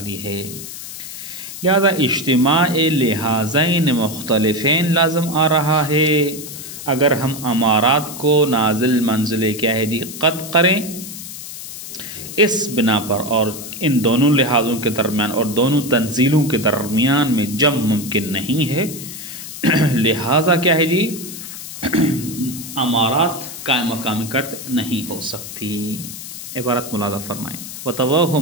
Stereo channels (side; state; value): left; noise; hiss, 11 dB below the sound